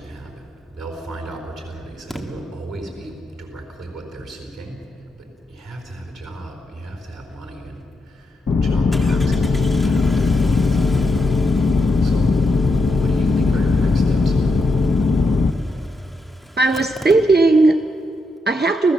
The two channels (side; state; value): both; normal; correlation 0.83